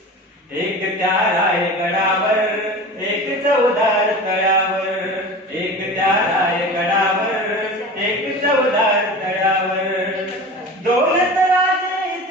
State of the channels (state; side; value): normal; both; correlation 0.34